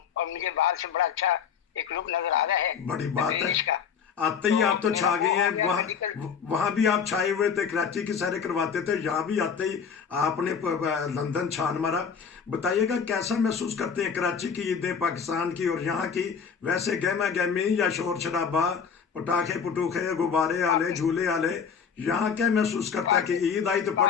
और मुझे बाहर से बड़ा अच्छा एक लुक नजर आ रहा है। बड़ी बात है। आते ही आप तो छा गए हैं। वहाँ भी आप छाए हुए थे, कराची की सैरें करवाते थे, यहाँ भी आते ही आपने लंदन छान मारा। बताइएगा कैसा महसूस करते हैं कराची की ईदें, पाकिस्तान की और यहाँ की? वैसे गहमा गहमी या शोर शराबा, पटाखे पुटूखे, गुब्बारे आले, झूले आले, यहाँ क्या महसूस करता है कि ईद आई तो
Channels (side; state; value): right; quieter; 6.7 dB